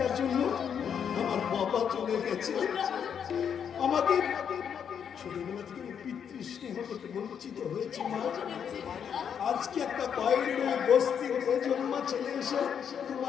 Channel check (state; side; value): quieter; right; 7.8 dB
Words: জন্য আমার বাবা চলে গেছে। আমাকে ছোটবেলা থেকে পিতৃস্নেহ থেকে বঞ্চিত হয়েছি মা। আজকে একটা বাইরের ওই বস্তির বেজন্মা ছেলে এসে